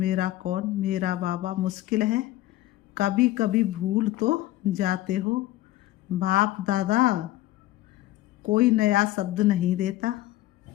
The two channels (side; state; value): right; quieter; 16.0 dB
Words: कौन? मेरा बाबा। मुश्किल है, कभी कभी भूल तो जाते हो। बाप दादा कोई नया शब्द नहीं देता।